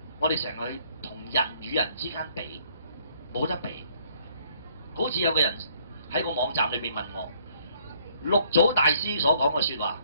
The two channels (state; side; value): inverted; both; correlation -0.64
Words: 我哋成日去同人與人之間比，冇得比。好似有個人喺個網站裏邊問我，六祖大師所講嘅説話，